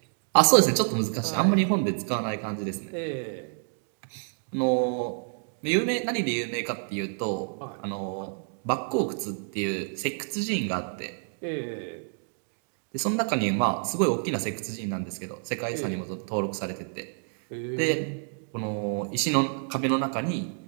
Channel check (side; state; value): left; silent; 59 dB below the other